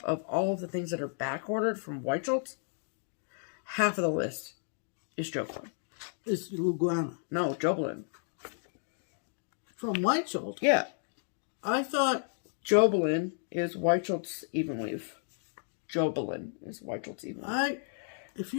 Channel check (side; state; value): right; silent; digital silence